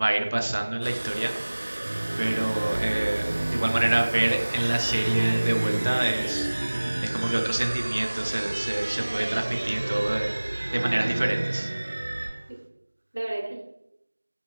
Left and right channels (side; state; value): both; inverted; correlation -1.00